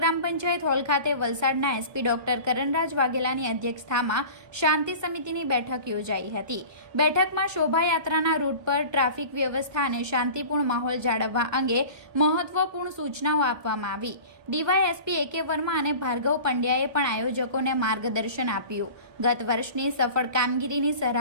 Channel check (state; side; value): late; left; 1.3 ms